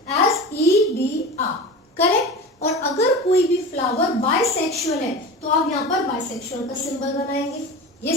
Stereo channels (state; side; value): normal; both; correlation 0.31